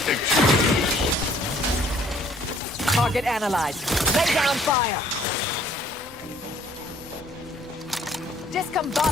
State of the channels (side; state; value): both; normal; correlation 0.60